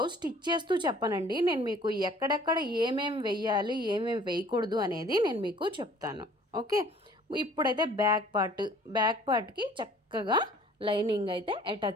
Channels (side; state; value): both; normal; correlation 0.53